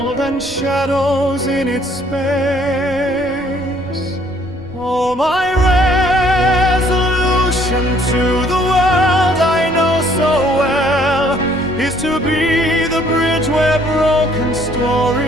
and shadows in its space. Oh, my resolution to the world I know so well is to be the bridge where broken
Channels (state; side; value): noise; right; rumble, 18 dB below the sound